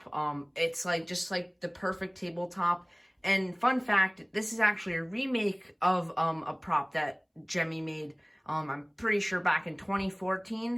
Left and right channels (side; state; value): both; identical; correlation 1.00